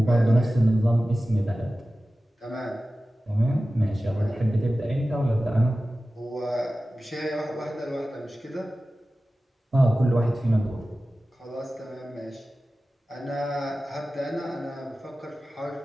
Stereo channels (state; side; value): normal; both; correlation 0.95